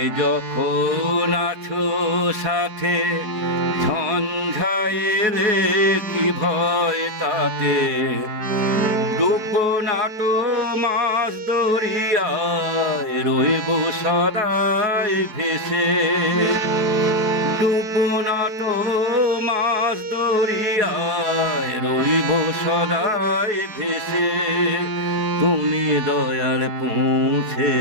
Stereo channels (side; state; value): left; late; 4.7 ms